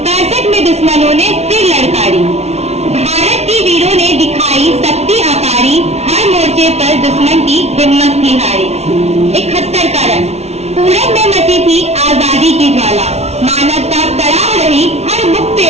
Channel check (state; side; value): late; left; 0.31 ms